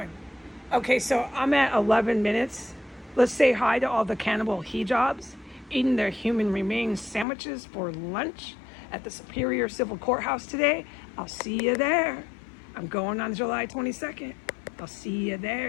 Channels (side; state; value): right; drops out; at 7.2 s